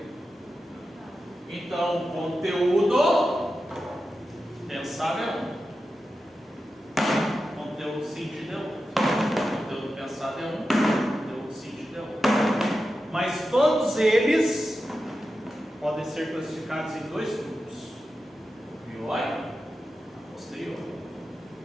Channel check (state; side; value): normal; both; correlation 0.91